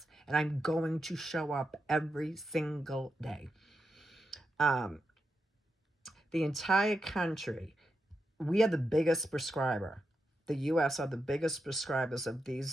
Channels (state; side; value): normal; both; correlation 0.87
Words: And I'm going to show up every single day. The entire country, we are the biggest prescriber. The U.S. are the biggest prescribers of